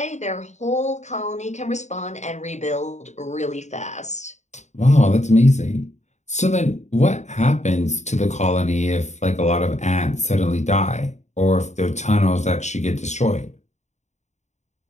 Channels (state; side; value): late; right; 0.34 ms